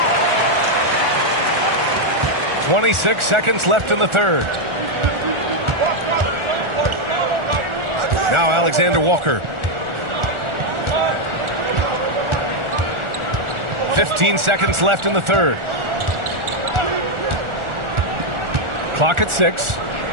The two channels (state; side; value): late; left; 1.4 ms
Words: 26 seconds left in the third. Now Alexander Walker. 15 seconds left in the third. Clock at 6.